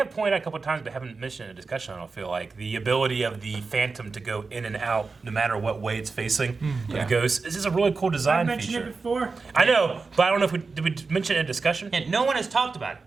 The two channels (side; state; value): left; quieter; 4.3 dB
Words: pointed out a couple of times, but haven't mentioned in a discussion, I don't feel like. The ability of the Phantom to go in and out no matter what way it's facing. The ghost. This is a really cool design feature. I mentioned it before. I know, but I don't know if did we mention it in a discussion? And no one has talked about it.